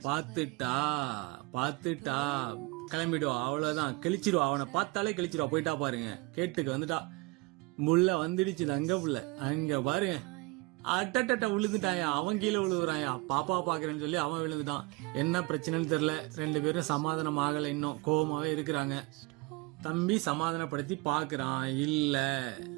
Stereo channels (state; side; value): quieter; left; 25.3 dB